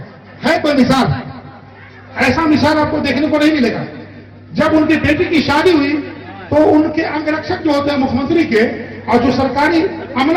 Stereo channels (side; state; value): both; identical; correlation 1.00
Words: है कोई मिसाल? ऐसा मिसाल आपको देखने को नहीं मिलेगा। जब उनकी बेटी की शादी हुई तो उनके अंगरक्षक जो होते हैं मुख्यमंत्री के और जो सरकारी